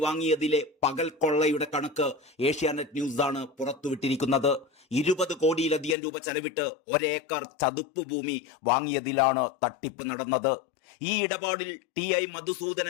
വാങ്ങിയതിലെ പകൽ കൊള്ളയുടെ കണക്ക് ഏഷ്യാനെറ്റ് ന്യൂസാണ് പുറത്തുവിട്ടിരിക്കുന്നത്. 20 കോടിയിലധികം രൂപ ചെലവിട്ട് ഒരേക്കർ ചതുപ്പ് ഭൂമി വാങ്ങിയതിലാണ് തട്ടിപ്പ് നടന്നത്. ഈ ഇടപാടിൽ TI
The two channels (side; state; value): right; drops out; at 6.0 s